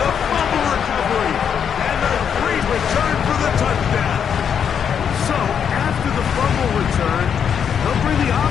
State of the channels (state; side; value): quieter; right; 7.7 dB